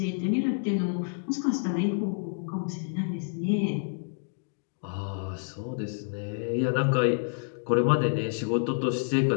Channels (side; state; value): right; silent; digital silence